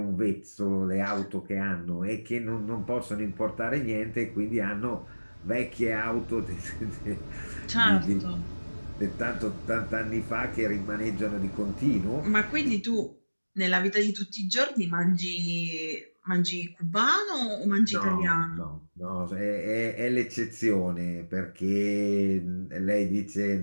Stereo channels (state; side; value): inverted; both; correlation -1.00